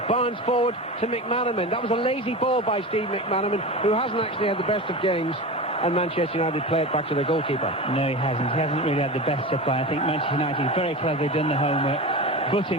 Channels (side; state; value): both; normal; correlation 0.28